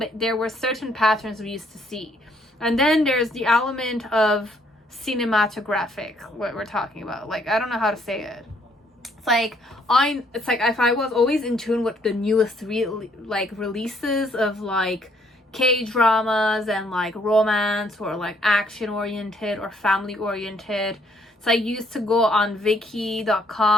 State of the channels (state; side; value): normal; both; correlation 0.67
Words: there were certain patterns we used to see. And then there's the element of cinematographic, what we're talking about. Like, I don't know how to say it. It's like if I was always in tune with the newest releases of like K-dramas and like romance or like action oriented or family oriented. So I used to go on